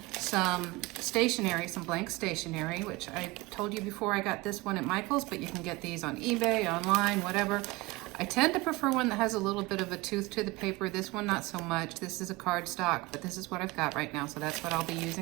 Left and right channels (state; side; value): quieter; left; 21.9 dB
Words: some stationery, some blank stationery, which I told you before I got this one at Michael's, but you can get these on eBay, online, whatever. I tend to prefer one that has a little bit of a tooth to the paper. This one, not so much. This is a cardstock, but this is what I've got right now, so that's what I'll be